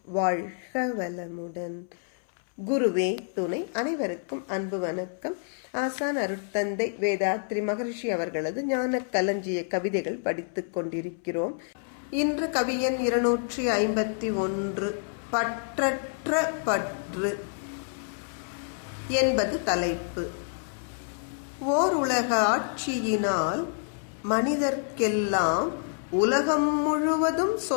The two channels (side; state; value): right; silent; 59 dB below the other